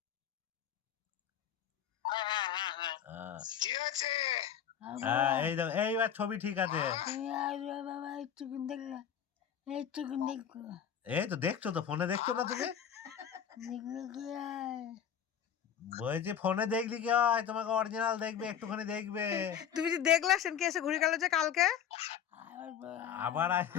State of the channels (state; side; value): quieter; right; 8.8 dB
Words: এই দেখো, এইবার ছবি ঠিক আছে। এই তো দেখছো তো, ফোনে দেখছো না তুমি? বলছি ফোনে দেখলি কি হয়, তোমাকে অরিজিনাল দেখবে, একটুখানি দেখবে। তুমি যে দেখলা সেনকে এসে ঘুরে গেল যে কালকে। আবার